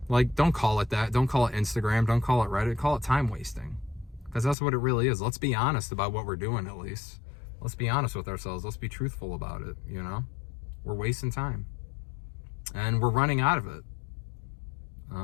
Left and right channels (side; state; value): right; drops out; at 4.5 s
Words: like, don't call it that. Don't call it Instagram. Don't call it Reddit. Call it time wasting. Because that's what it really is. Let's be honest about what we're doing, at least. Let's be honest with ourselves. Let's be truthful about it, you know? We're wasting time. And we're running out of it.